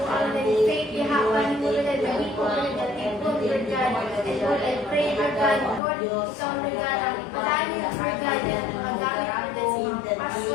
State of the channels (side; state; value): right; drops out; at 5.8 s